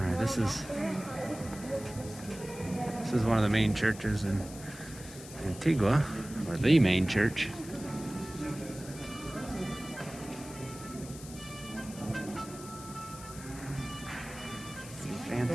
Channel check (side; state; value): left; noise; hiss, 15 dB below the sound